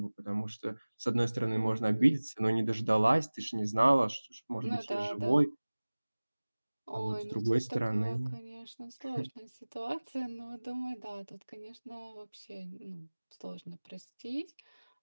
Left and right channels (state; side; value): inverted; both; correlation -1.00